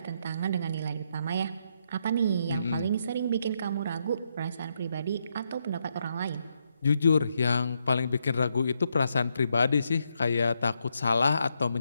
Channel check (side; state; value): both; inverted; correlation -0.79